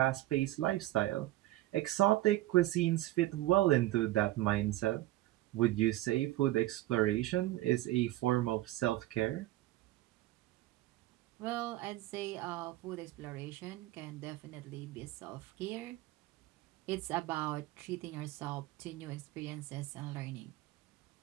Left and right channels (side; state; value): left; quieter; 16.8 dB